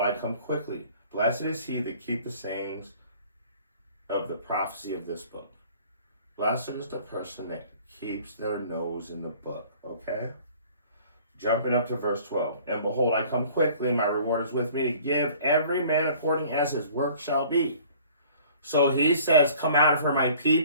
come quickly. Blessed is he that keep the sayings of the prophecy of this book. Blessed is the person that keeps their nose in the book. Okay? Jumping up to verse 12. And behold, I come quickly, and my reward is with me to give every man according as his work shall be. So he says, come out of her, my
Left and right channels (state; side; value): inverted; both; correlation -0.51